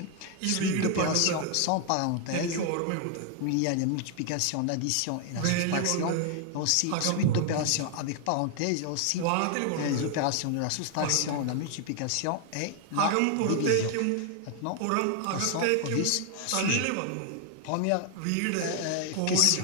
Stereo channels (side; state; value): both; different; correlation 0.00